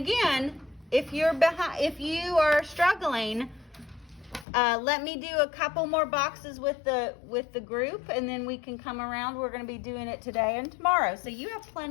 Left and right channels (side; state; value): right; drops out; at 4.5 s